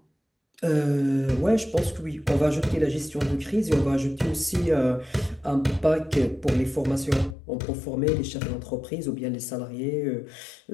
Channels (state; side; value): drops out; right; at 7.4 s